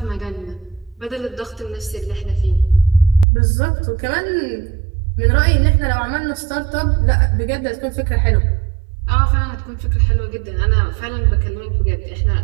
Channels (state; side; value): drops out; left; at 3.2 s